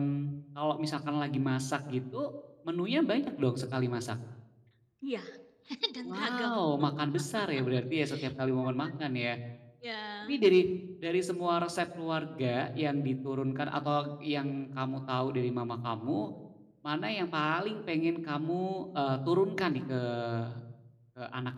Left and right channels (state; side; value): identical; both; correlation 1.00